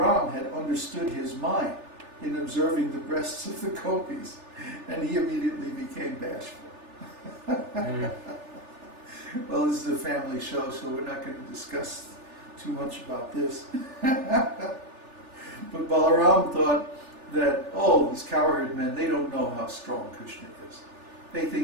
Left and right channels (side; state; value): left; late; 3.4 ms